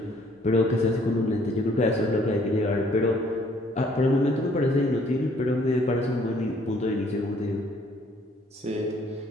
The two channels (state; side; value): normal; both; correlation 0.62